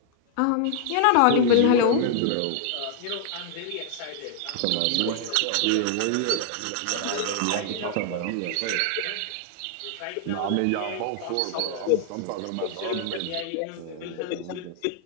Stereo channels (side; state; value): both; different; correlation 0.00